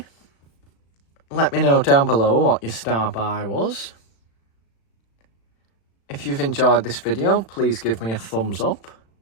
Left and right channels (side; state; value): right; late; 36 ms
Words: Let me know down below what your star buy was. If you've enjoyed this video, please give me a thumbs up.